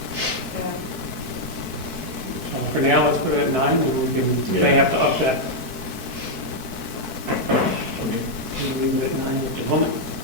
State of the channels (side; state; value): left; late; 4.6 ms